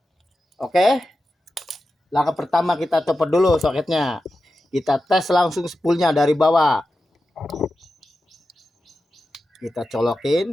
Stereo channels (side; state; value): both; normal; correlation 0.92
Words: Oke. Langkah pertama kita copot dulu soketnya. Kita tes langsung spoolnya dari bawah. Kita